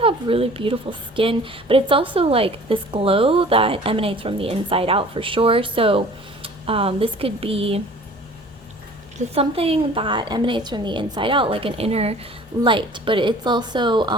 have really beautiful skin, but it's also like this glow that emanates from the inside out for sure. So this could be just something that emanates from the inside out, like an inner light, but it's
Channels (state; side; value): normal; both; correlation 0.47